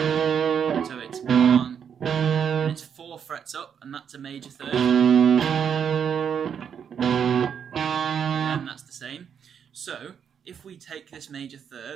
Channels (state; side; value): quieter; left; 7.7 dB